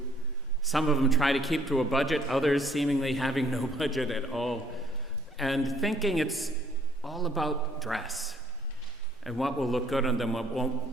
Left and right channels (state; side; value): normal; both; correlation 0.63